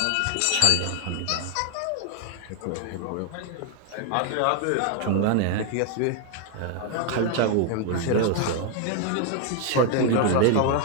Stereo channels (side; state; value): both; different; correlation 0.00